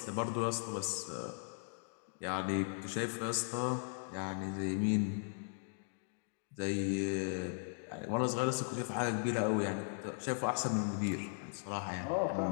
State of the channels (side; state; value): right; silent; digital silence